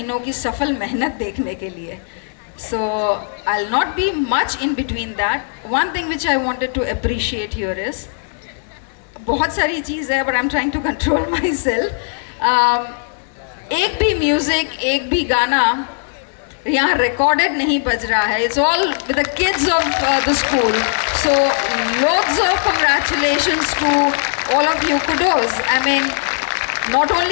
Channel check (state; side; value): silent; right; digital silence